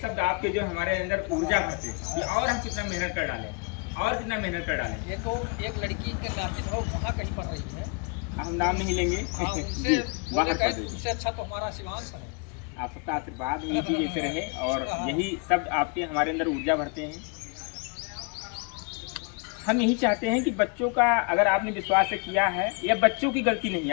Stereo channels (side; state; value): right; quieter; 33.2 dB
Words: आपके जो हमारे अंदर ऊर्जा भरते हैं कि और हम कितना मेहनत कर डालें, और कितना मेहनत कर डालें। ये तो एक लड़की के नामित हो वहाँ कहीं पढ़ रही है हम नाम नहीं लेंगे। जी, बाहर पढ़ रही है। उससे अच्छा तो हमारा शिवांश है। आप सबका आशीर्वाद यही चीज़ ऐसे रहे और यही शब्द आपके हमारे अंदर ऊर्जा भरते हैं। हम यही चाहते हैं कि बच्चों का अगर आपने विश्वास से किया है, या बच्चों की गलती नहीं,